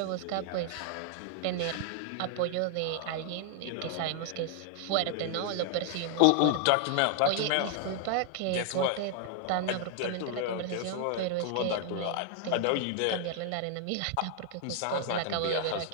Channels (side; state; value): both; different; correlation 0.00